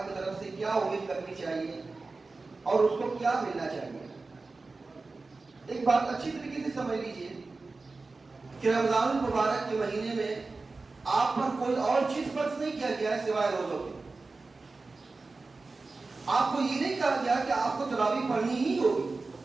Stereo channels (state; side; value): quieter; left; 3.7 dB